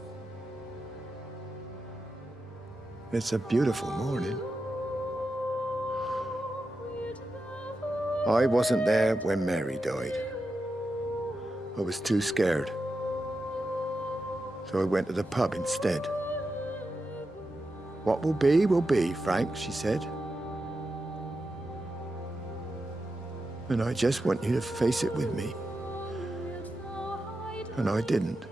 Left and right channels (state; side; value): normal; both; correlation 0.89